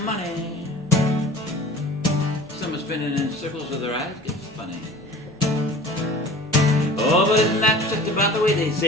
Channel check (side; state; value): both; normal; correlation 0.43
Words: money. Some are spinning in circles so their eyes get funny. Oh, but isn't that just about the way they